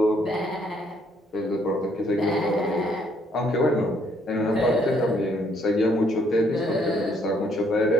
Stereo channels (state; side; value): normal; both; correlation 0.67